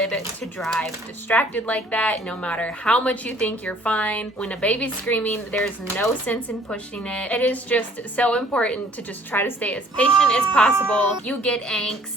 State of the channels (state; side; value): normal; both; correlation 0.57